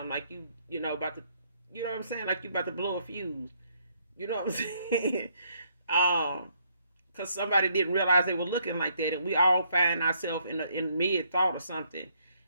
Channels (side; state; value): both; inverted; correlation -0.70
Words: Like about to, you know what I'm saying? Like you about to blow a fuse. You know what I'm saying? um, because somebody didn't realize they were looking like that, and we all find ourselves in mid thought or something,